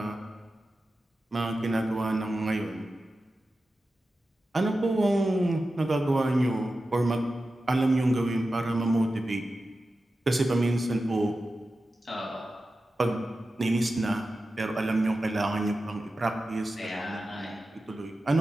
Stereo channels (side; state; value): both; normal; correlation 0.93